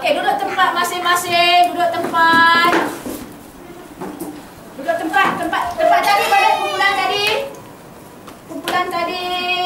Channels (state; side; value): identical; both; correlation 1.00